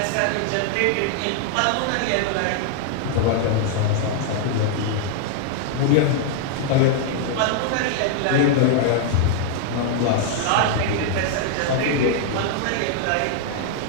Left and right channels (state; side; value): different; both; correlation 0.00